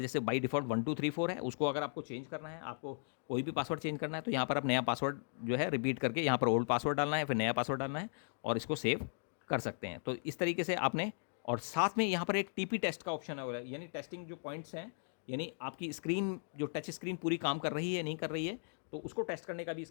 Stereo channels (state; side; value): silent; right; digital silence